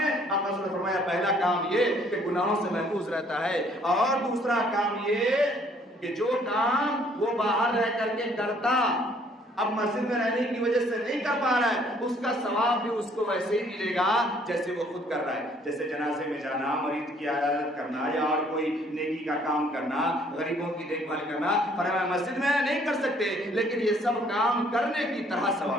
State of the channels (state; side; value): normal; both; correlation 0.62